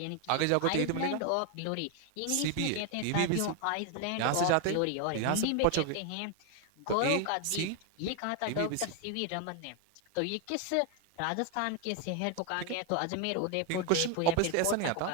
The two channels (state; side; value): different; both; correlation 0.01